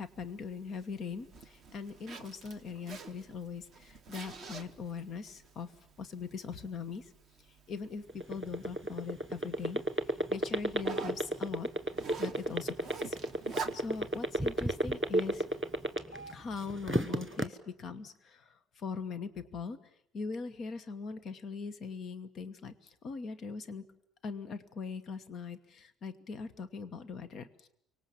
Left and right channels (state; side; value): normal; both; correlation 0.61